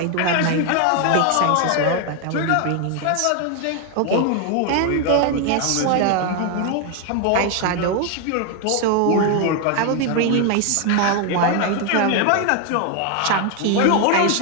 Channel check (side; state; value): both; different; correlation 0.01